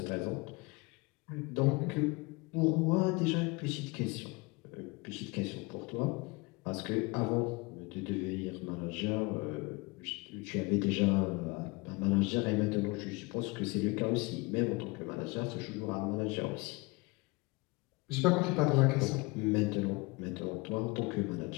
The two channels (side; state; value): right; quieter; 25.7 dB